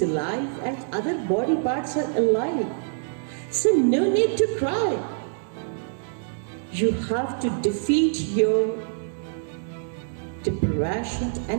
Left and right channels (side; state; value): left; silent; digital silence